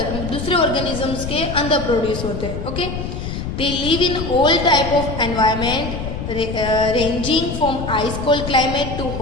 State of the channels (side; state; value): left; noise; rumble, 6 dB below the sound